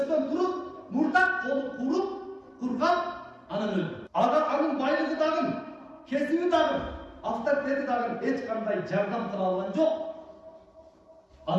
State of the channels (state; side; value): identical; both; correlation 1.00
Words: durup, murdak kolu kurup, kurgan, anan öldü. Anın baylığı dağın, kesimi dağın, avtoritet dağın, hiç kanday jardam kıla algan yok.